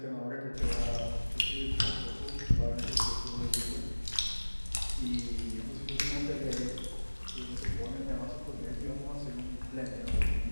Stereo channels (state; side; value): inverted; both; correlation -1.00